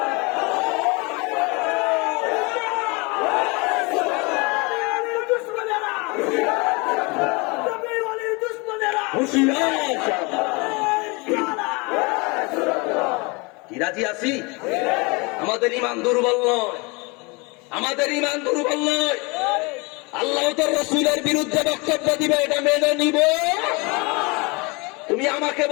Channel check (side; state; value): right; quieter; 28.0 dB